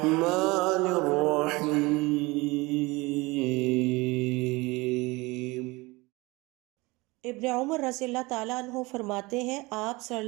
الرحیم۔ ابن عمر رضی اللہ تعالیٰ عنہ فرماتے ہیں، آپ صلی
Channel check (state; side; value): quieter; left; 23.2 dB